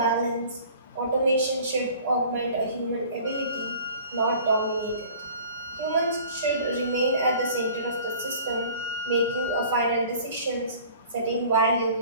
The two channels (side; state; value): both; inverted; correlation -0.47